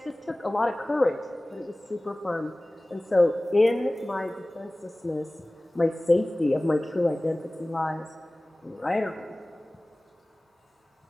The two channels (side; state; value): both; normal; correlation 0.98